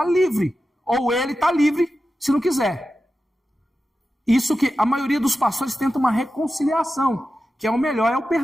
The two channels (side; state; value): both; normal; correlation 0.92